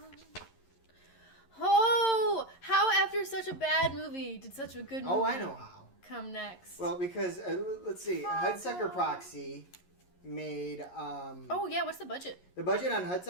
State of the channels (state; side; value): late; right; 11 ms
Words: Oh, how after such a bad movie did such a good movie? Oh, I know how. Come next. Well, because let's see, Hudsucker Proxy made. Oh yeah, what's the budget? The budget on